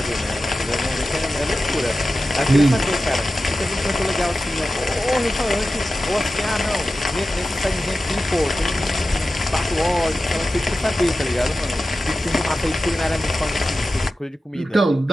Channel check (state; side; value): normal; both; correlation 0.93